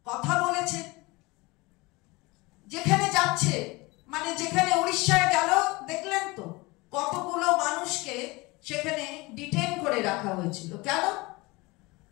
কথা বলেছেন। যেখানে যাচ্ছে, মানে যেখানে উড়িষ্যায় গেল, দেখলেন তো কতগুলো মানুষকে সেখানে ডিটেইন করে রাখা হয়েছিল। কেন?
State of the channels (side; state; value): right; quieter; 23.6 dB